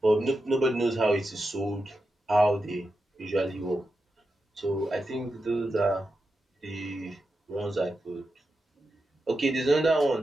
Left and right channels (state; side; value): normal; both; correlation 0.89